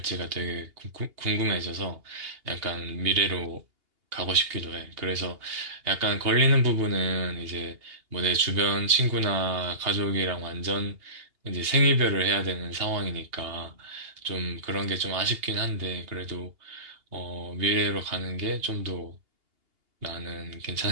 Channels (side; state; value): left; late; 2.8 ms